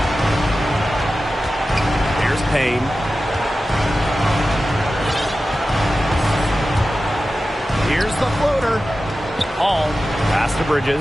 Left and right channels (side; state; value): both; normal; correlation 0.93